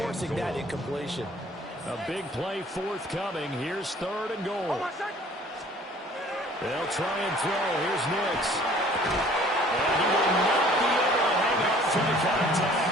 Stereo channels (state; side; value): normal; both; correlation 0.53